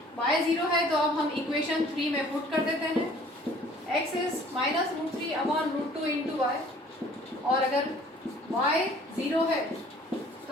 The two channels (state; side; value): normal; both; correlation 0.54